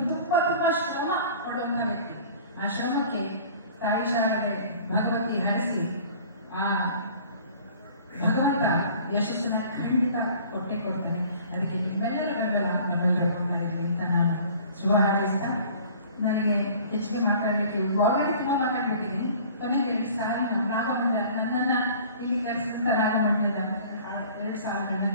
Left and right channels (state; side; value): inverted; both; correlation -0.48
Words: ತುಂಬಾ ಶ್ರಮ ಪಡುವಂತ ವ್ಯಕ್ತಿ. ಆ ಶ್ರಮಕ್ಕೆ ತಾಯಿ ಶಾರದೆ ಭಗವತಿ ಹರಿಸಿ ಆ ಭಗವಂತ ಯಶಸ್ಸನ್ನ ಖಂಡಿತ ಕೊಟ್ಟೆ ಕೊಡ್ತಾನೆ. ಅದಕ್ಕೆ ನಿಮ್ಮೆಲ್ಲರ ಬೆಂಬಲ ನಮ್ಮೆಲ್ಲರೂ ಕೊಡ್ತಾ ಇದ್ವಿ ಅಂತ ನಾನು ಶುಭ ಹಾರೈಸ್ತಾ, ನನಗೆ ಹೆಚ್ಚಿಗೆ ಮಾತಾಡಲಿಕ್ಕೆ ಆಲ್ರೆಡಿ ತುಂಬಾ ಮಾತಾಡ್ಬಿಟ್ಟಿದ್ದೀನಿ. ಕೊನೆಗೆ 2 ಸಾಲಿನ ರಾಗಮಂಡಲ ನನ್ನನ್ನ ಇಲ್ಲಿ ಕರೆಸಿದಂತ ರಾಗಮಂಡಲದ 2 ಸಾಲುಗಳನ್ನ